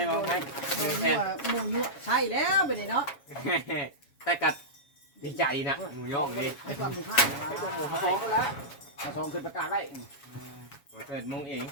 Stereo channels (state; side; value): late; right; 7.2 ms